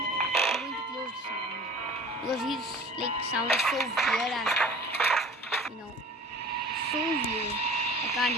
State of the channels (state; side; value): normal; both; correlation 0.43